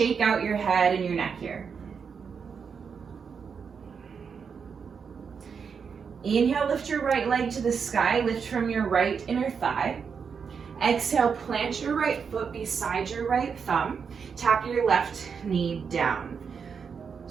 out your head and your neck here. Inhale, lift your right leg to the sky, lift from your right inner thigh. Exhale, plant your right foot beside your right thumb. Tap your left knee down.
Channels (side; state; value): left; quieter; 6.2 dB